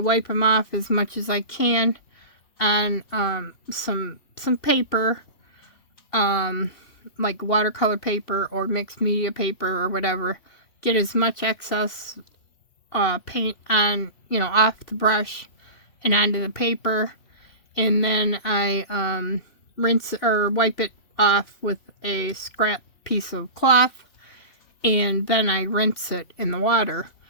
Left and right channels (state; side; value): late; right; 2.7 ms